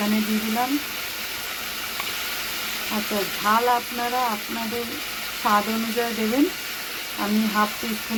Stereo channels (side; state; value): both; identical; correlation 1.00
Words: দিয়ে দিলাম। আচ্ছা, ঝাল আপনারা আপনাদের স্বাদ অনুযায়ী দেবেন, আমি হাফ